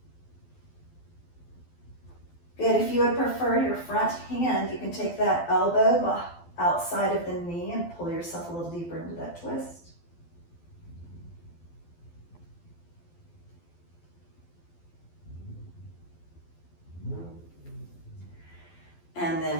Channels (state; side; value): late; right; 12 ms